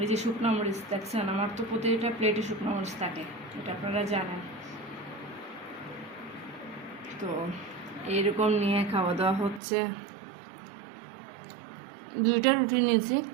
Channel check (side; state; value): left; drops out; at 9.6 s